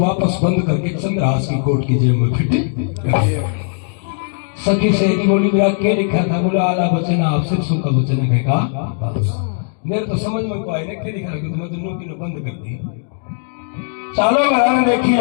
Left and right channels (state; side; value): silent; right; 66 dB below the other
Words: बंद करके चंद्रहास की कोट की जेब में फिट कर दिया। सखी सहेली बोली मेरा क्या लिखा था? बोला आला वचन आप सिरसों का वचन कहेगा। मेरे तो समझ में को आए ना क्या लिखा कि तुम्हें दोनों की बंद कर दी। चालो बनाने देखी